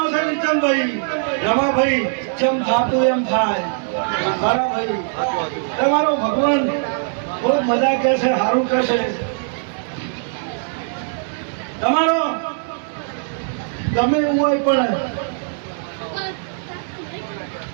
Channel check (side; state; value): left; silent; 59 dB below the other